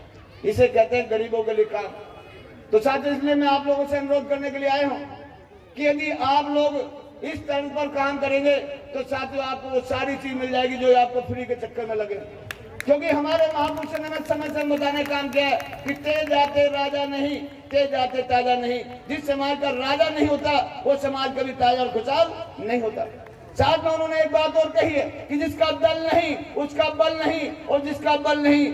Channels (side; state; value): both; identical; correlation 1.00